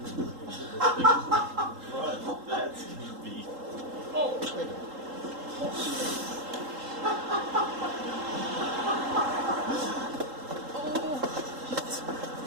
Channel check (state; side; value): late; left; 3.8 ms